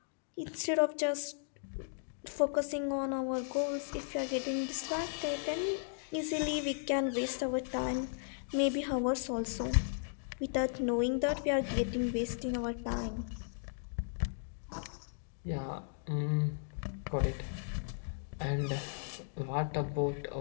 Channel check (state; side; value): silent; right; digital silence